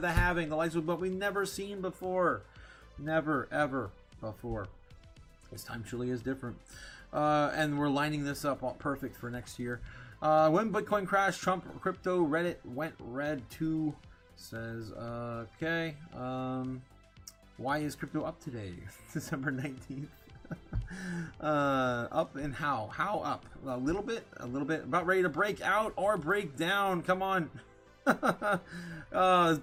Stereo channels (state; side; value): identical; both; correlation 1.00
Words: halving. The likes of what we've never seen before, never ever before. This time truly is different, and we're lining this up all perfect for next year. When Bitcoin crashed, Trump crypto Reddit went red too. Says okay. Why is crypto up today? December 19th. Up and how? How up? A little bit. About ready to break out or break down. Come on. This